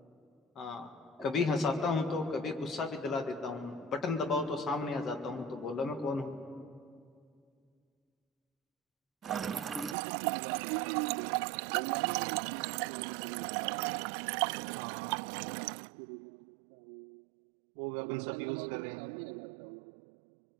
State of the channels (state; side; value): drops out; left; at 10.0 s